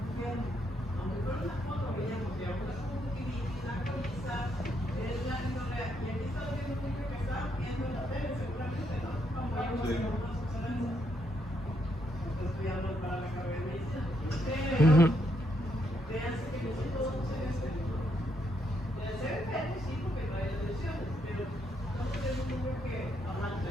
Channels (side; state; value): both; normal; correlation 0.76